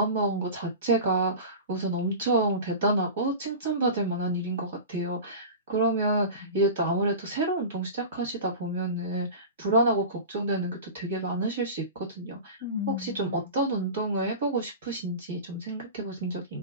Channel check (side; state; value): both; inverted; correlation -0.31